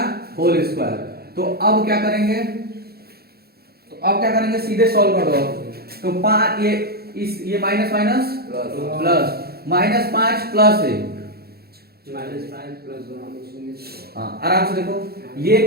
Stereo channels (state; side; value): late; left; 0.46 ms